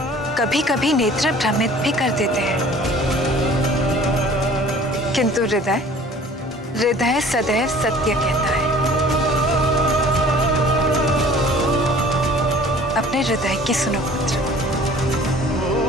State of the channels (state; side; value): normal; both; correlation 0.49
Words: कभी कभी नेत्र भ्रमित भी कर देते हैं, किंतु हृदय हृदय सदैव सत्य कहता है। अपने हृदय की सुनो पुत्र।